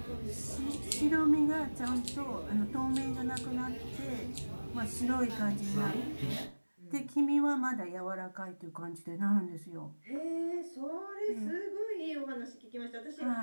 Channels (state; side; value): inverted; both; correlation -1.00